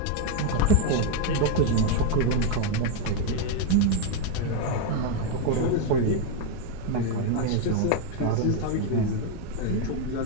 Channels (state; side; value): different; both; correlation 0.02